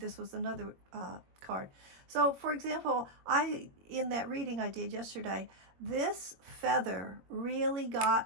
was another card. So, for example, in that reading I did yesterday, this feather really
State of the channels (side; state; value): left; late; 21 ms